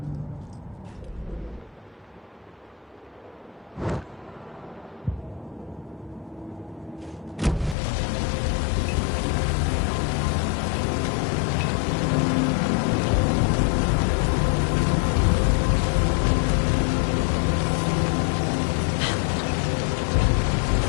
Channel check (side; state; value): right; drops out; at 7.8 s